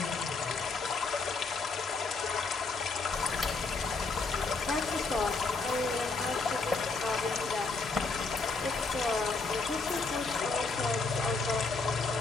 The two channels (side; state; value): right; quieter; 4.0 dB